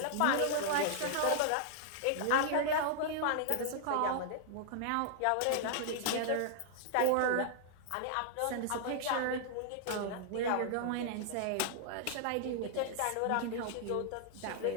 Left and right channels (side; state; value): both; different; correlation -0.01